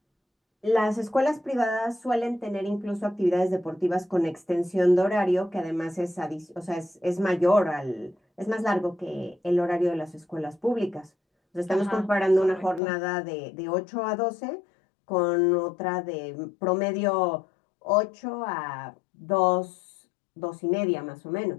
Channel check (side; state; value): right; drops out; at 12.8 s